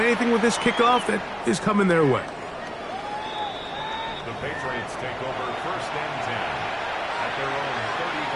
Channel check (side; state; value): both; identical; correlation 1.00